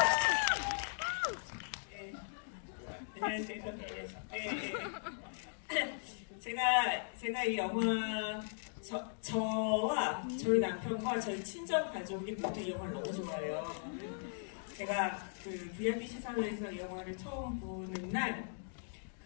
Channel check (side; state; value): right; silent; digital silence